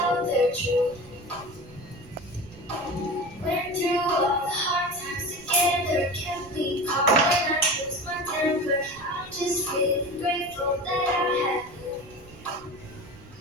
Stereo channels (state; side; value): noise; right; rumble, 21 dB below the sound